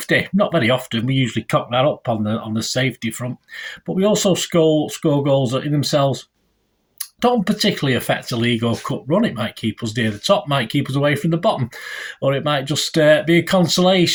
Not very often. We usually cock that up on the safety front. But we also score goals that in themselves don't particularly affect a league or cup run. It might keep us near the top, might keep us away from the bottom, or it might just be a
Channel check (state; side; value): identical; both; correlation 1.00